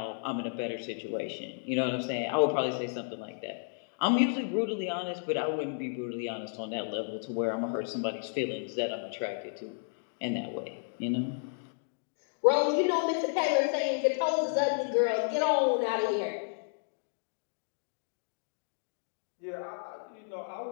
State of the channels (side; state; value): right; silent; digital silence